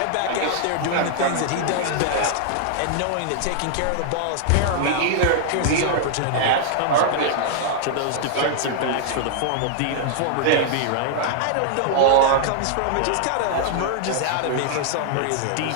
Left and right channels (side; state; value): both; different; correlation -0.01